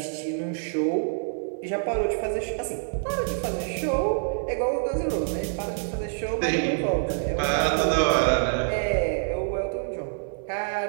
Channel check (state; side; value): silent; left; digital silence